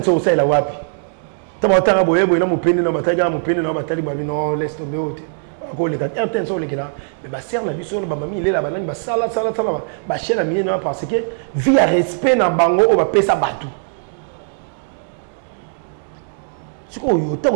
au la wapi tama tanga boye na mupende na bataga mupende na batali ba non laisse tomber ote ko les gars RTNC les gars mais ba serre la biso ba mami il est là ba ba sala ba chela mi na parce que via respect na bango o ba pesa batu siko yo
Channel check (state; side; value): silent; left; digital silence